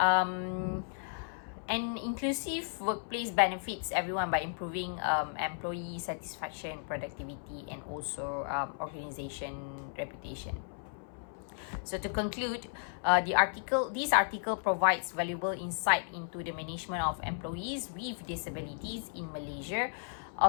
inclusive workplace benefits everyone by improving employee satisfaction, productivity, and also organization reputation. So to conclude, this article provides valuable insight into the management of employees with disabilities in Malaysia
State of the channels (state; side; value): silent; right; 55 dB below the other